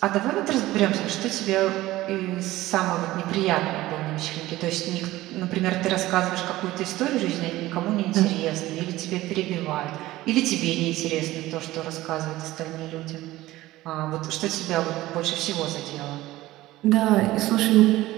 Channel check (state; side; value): quieter; left; 16.9 dB